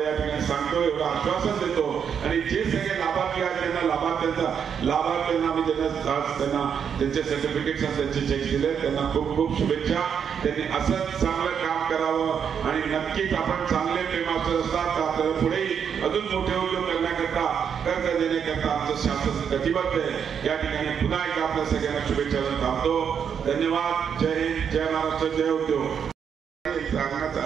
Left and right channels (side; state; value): left; quieter; 7.5 dB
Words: या ठिकाणी सांगतो, एवढं आश्वासन देतो. आणि जे सगळे लाभार्थी आहेत त्यांना लाभार्थ्यांना आम्ही त्यांना त्यांचे सर्टिफिकेट्स त्यांचे चेक दिले, त्यांना खूप खूप शुभेच्छा. त्यांनी असंच चांगलं काम करावं आणि नक्कीच आपण चांगले फेमास्टर असतात तर आपल्याला पुढेही अजून मोठे उद्योग करण्याकरता, कर्ज देण्याकरता आमचं शासन कटिबद्ध आहे. या ठिकाणी पुन्हा एकदा आपल्या सगळ्यांना शुभेच्छा देऊन थांबतो. धन्यवाद. जय हिंद, जय महाराष्ट्र, जय उद्योग. सांगण्याचा